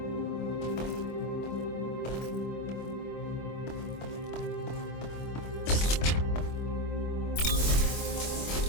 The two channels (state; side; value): late; right; 25 ms